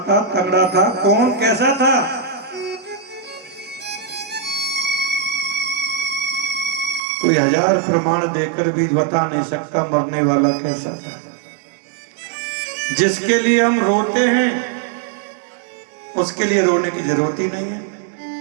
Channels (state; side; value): drops out; left; at 7.0 s